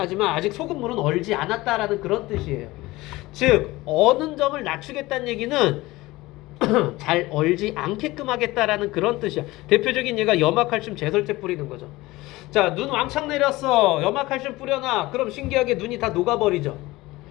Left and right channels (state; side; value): quieter; right; 19.6 dB